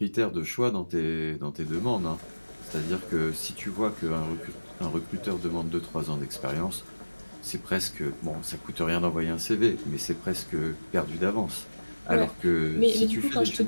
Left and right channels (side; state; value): both; inverted; correlation -1.00